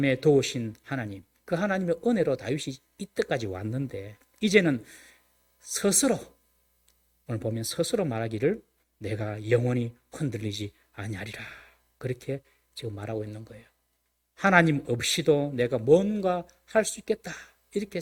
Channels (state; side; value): identical; both; correlation 1.00